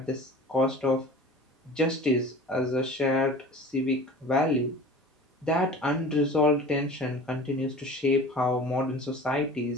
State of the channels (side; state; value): both; normal; correlation 0.40